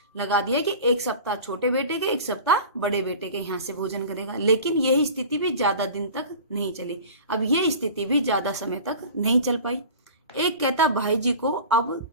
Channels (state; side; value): inverted; both; correlation -0.38